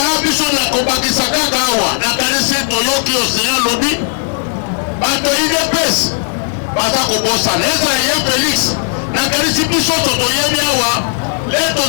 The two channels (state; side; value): silent; right; 57 dB below the other